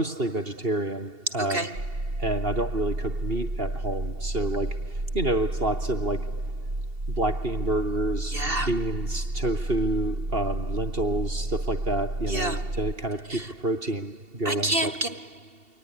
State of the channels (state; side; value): late; left; 2.7 ms